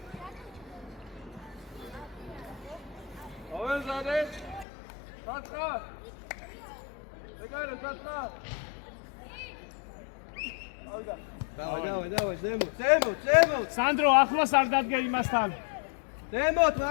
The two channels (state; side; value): drops out; right; at 4.7 s